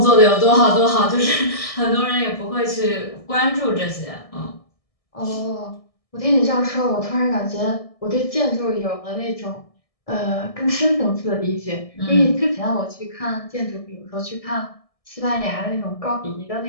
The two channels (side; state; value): right; late; 1.6 ms